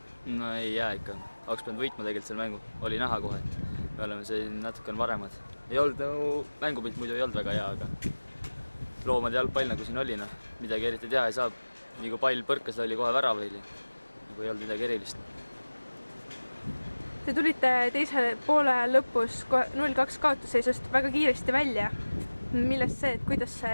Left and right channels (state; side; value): inverted; both; correlation -1.00